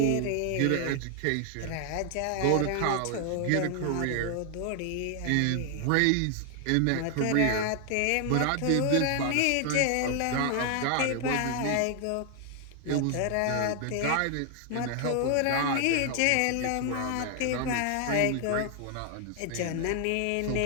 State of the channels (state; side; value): different; both; correlation 0.00